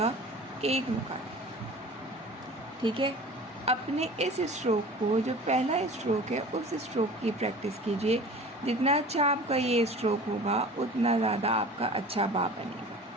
1 नुकात, ठीक है। अपने इस स्ट्रोक को, जो पहला स्ट्रोक है, उस स्ट्रोक की प्रैक्टिस कीजिए। जितना अच्छा आपका ये स्ट्रोक होगा उतना ज़्यादा आपका अच्छा बा बनेगा।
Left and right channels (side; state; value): both; normal; correlation 0.41